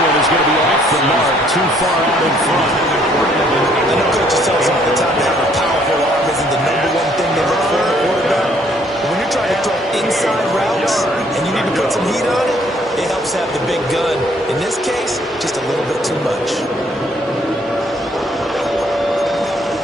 is going to be off the mark, too far out in front. I know coaches tell us all the time that a powerful arm isn't the #1 thing they look for in a quarterback. But when you're trying to throw inside routes and you need to put some heat on it, it helps have the big gun. In this case, just a little bit too much.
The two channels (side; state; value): both; normal; correlation 0.64